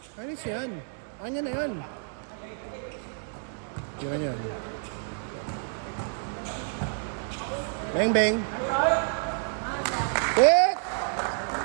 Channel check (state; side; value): silent; left; 59 dB below the other